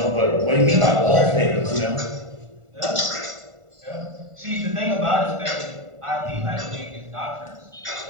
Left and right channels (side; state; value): left; late; 1.4 ms